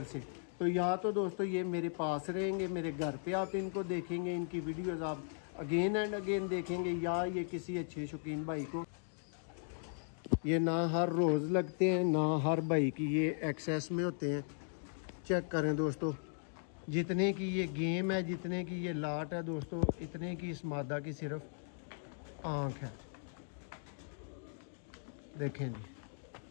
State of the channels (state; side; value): silent; right; digital silence